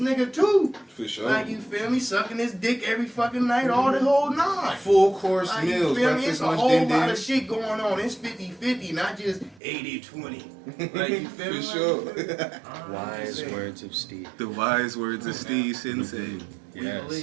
too. For sure. Like, you feel me? Sucking his dick every fucking night, all the whole nine. Full course Like, you meals, feel me? breakfast, It's a lunch, whole din lot din. of shit going on. It's 50-50, not just 80-20. Like, you feel me? For Like, sure. you feel me? Wise words of Steve. The wise words of Steve Sensei. We Yes.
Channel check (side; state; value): left; drops out; at 9.6 s